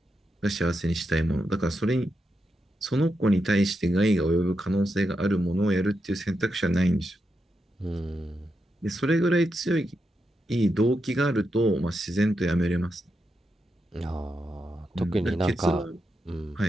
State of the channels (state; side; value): normal; both; correlation 0.86